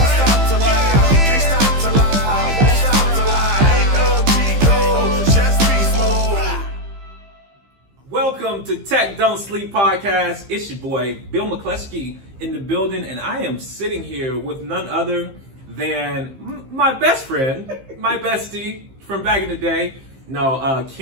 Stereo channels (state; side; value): late; left; 15 ms